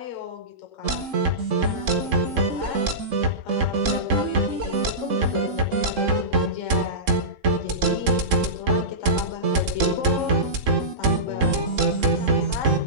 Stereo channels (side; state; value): left; late; 3.7 ms